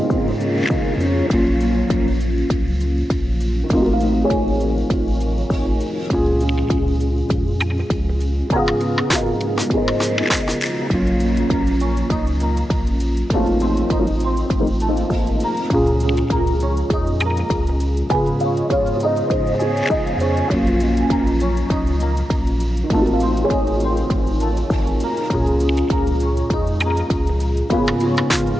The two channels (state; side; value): normal; both; correlation 0.91